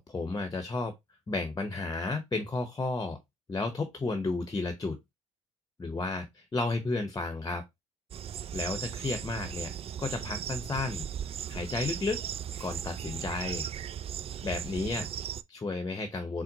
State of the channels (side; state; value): both; normal; correlation 0.63